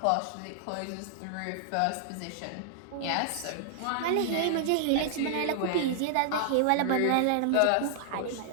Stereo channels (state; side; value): different; both; correlation -0.01